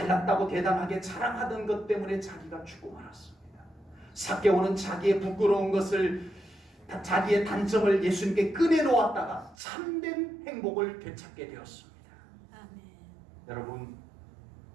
대담하게 자랑하던 것 때문에 자기가 죽고 말았습니다. 삭개오는 자기의 부끄러운 것을, 자기의 단점을 예수님께 꺼내놓았다가 참된 행복을 되찾게 되었습니다. 아멘. 여러분,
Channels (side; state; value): left; drops out; at 9.6 s